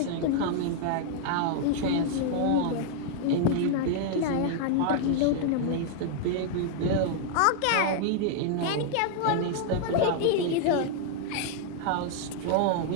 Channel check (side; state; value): both; different; correlation 0.00